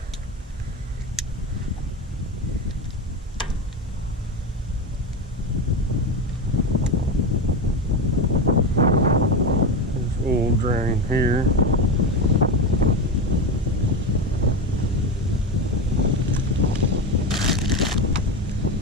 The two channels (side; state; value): both; normal; correlation 0.18